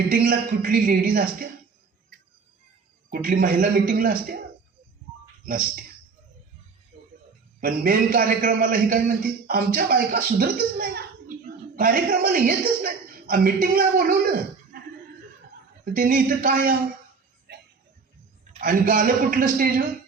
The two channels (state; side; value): quieter; left; 4.9 dB